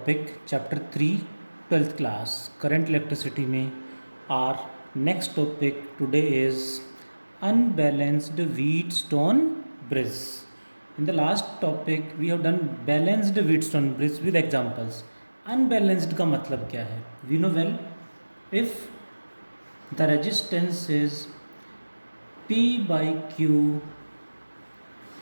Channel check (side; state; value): both; inverted; correlation -1.00